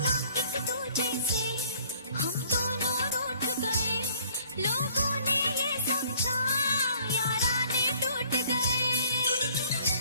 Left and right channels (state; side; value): inverted; both; correlation -0.57